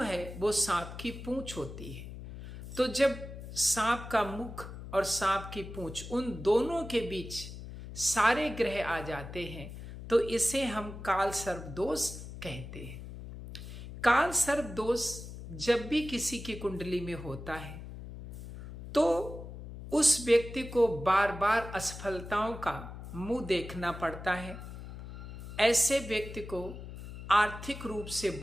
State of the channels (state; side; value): noise; left; hum, 11 dB below the sound